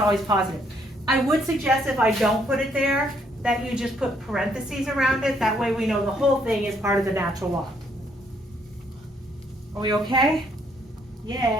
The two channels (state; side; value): normal; both; correlation 0.70